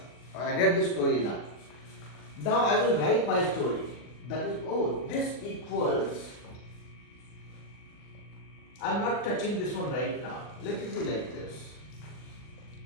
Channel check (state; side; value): late; right; 40 ms